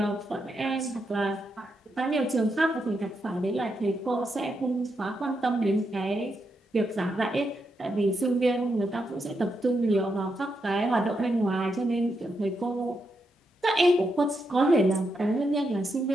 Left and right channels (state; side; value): normal; both; correlation 0.83